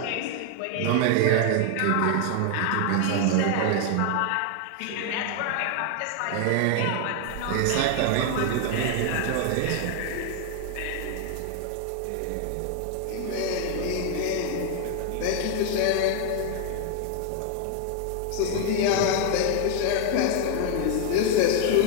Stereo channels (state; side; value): different; both; correlation 0.00